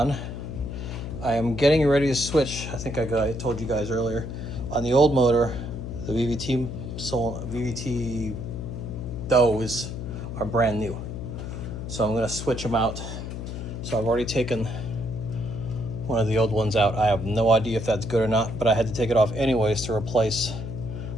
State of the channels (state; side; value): noise; left; hum, 7 dB below the sound